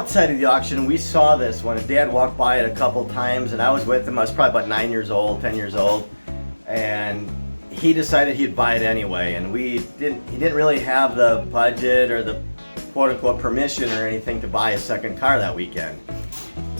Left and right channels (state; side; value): inverted; both; correlation -1.00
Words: of the auction we saw this when Dad walked by it a couple times, and I was with him. I was probably about 10 years old, and he decided he'd buy it anyway, and he didn't really have the budget or the quote-unquote permission or anything to buy a second car that weekend.